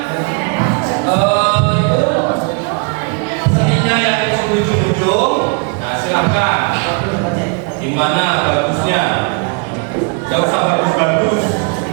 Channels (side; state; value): left; quieter; 36.1 dB